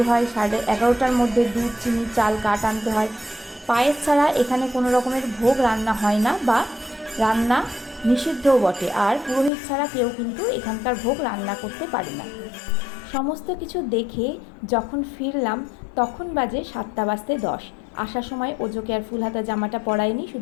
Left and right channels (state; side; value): drops out; right; at 9.5 s